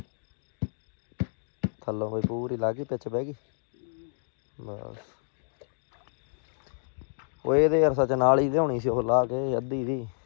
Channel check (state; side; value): silent; right; digital silence